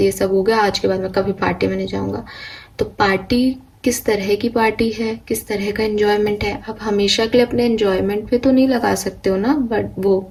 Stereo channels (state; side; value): identical; both; correlation 1.00